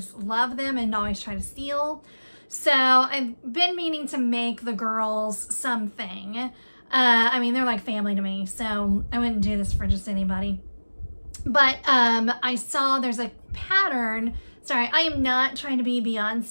love them and always try to steal. So I've been meaning to make the girls something. I mean, they're like family to me, so I wouldn't do this for just anybody. But I saw there's a pattern. Sorry, I am not trying to be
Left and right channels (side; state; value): both; inverted; correlation -1.00